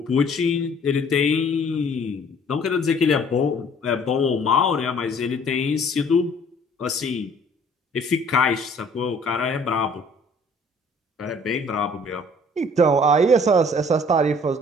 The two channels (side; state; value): both; normal; correlation 0.55